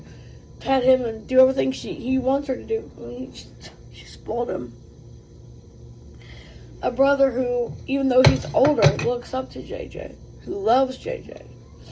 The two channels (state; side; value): identical; both; correlation 1.00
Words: pet him and do everything he wants her to do. She spoiled him. A brother who, even though he's older, looks up to JJ. Who loves JJ.